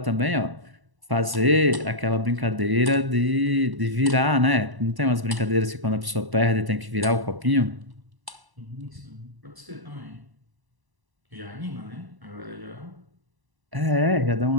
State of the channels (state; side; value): late; left; 1.0 ms